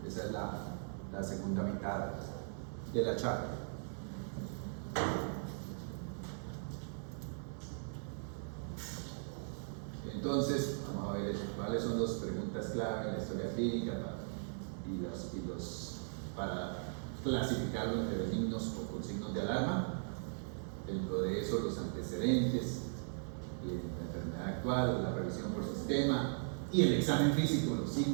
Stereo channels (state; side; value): silent; left; digital silence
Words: Esa es la segunda mitad de la charla. Entonces, vamos a ver cuáles son las preguntas clave en la historia clínica para clasificarlo entre benignos o con signos de alarma. Dentro de eso, los antecedentes, la enfermedad actual, la revisión por sistema y el examen físico, los